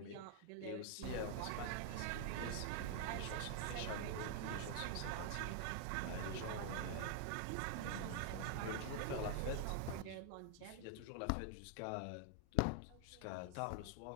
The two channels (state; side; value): different; both; correlation 0.00